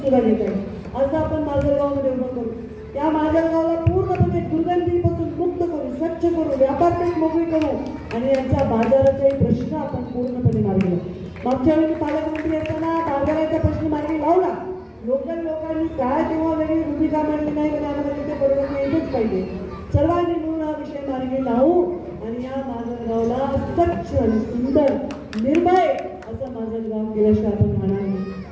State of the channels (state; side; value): identical; both; correlation 1.00